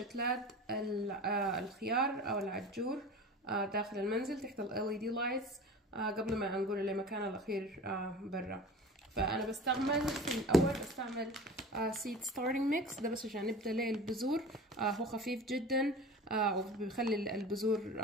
الخيار او العجور داخل المنزل تحت ال LED lights قبل ما نقول لمكان الاخير برا. فانا في الاول بستعمل seed starting mix ده بس عشان نبدأ ليه البذور. هو خفيف جدا وبيخلي البذور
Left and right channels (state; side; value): normal; both; correlation 0.38